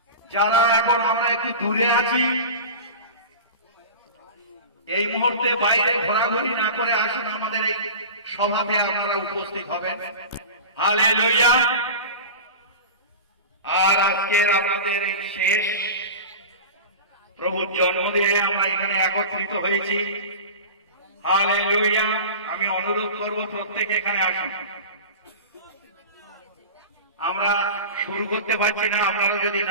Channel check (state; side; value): inverted; both; correlation -0.32